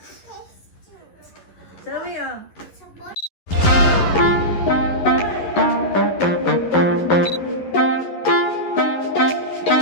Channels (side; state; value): right; late; 11 ms